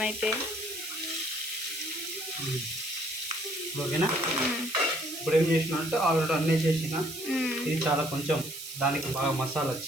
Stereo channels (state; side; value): noise; right; hiss, 10 dB below the sound